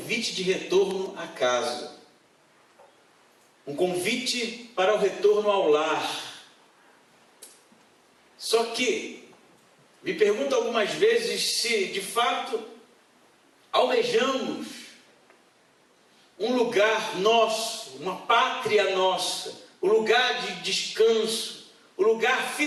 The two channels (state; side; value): identical; both; correlation 1.00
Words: de retorno à casa. Um convite para o retorno ao lar. Só que, me pergunto algumas vezes se, de fato, almejamos um lugar nosso, uma pátria nossa, o lugar de descanso, o lugar